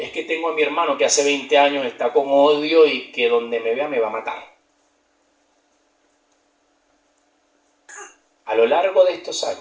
que tengo a mi hermano que hace 20 años está con odio y que donde me vea me va a matar. A lo largo de estos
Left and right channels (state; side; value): identical; both; correlation 1.00